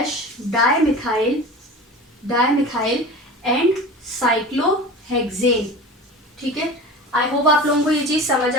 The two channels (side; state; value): both; normal; correlation 0.34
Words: dimethyl and cyclohexane. ठीक है, आई होप आप लोगों को ये चीज़ समझ